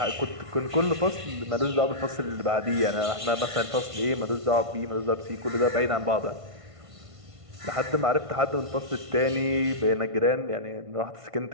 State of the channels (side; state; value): left; late; 1.5 ms